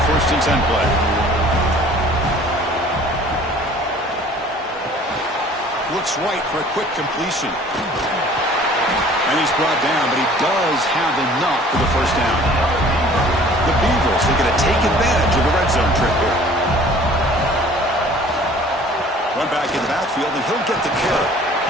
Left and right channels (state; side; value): normal; both; correlation 0.51